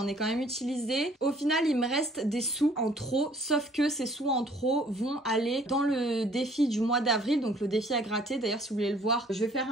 ai quand même utilisé. Au final il me reste des sous en trop, sauf que ces sous en trop vont aller dans le défi du mois d'avril, donc le défi à gratter. D'ailleurs si vous voulez le voir, je vais faire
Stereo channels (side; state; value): both; normal; correlation 0.58